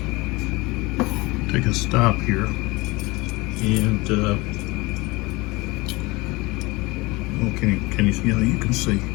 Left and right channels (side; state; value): right; quieter; 23.4 dB